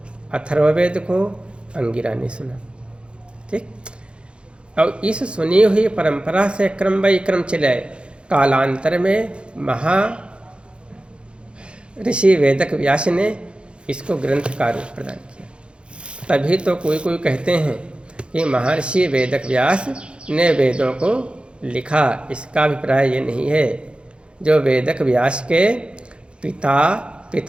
अथर्ववेद को अंगिरा ने सुना। ठीक, और इस सुनी हुई परंपरा से क्रम बाई क्रम चले। कालांतर में ऋषि वेदक व्यास ने इसको ग्रंथ का रूप प्रदान किया। तभी तो कोई कोई कहते हैं कि महर्षि वेदक व्यास ने वेदों को लिखा। इसका अभिप्राय ये नहीं है। जो वेदक व्यास के पिता,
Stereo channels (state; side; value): late; left; 0.056 ms